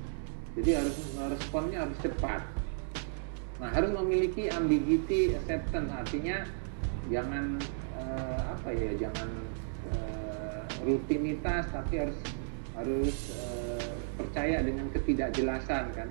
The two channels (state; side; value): silent; left; digital silence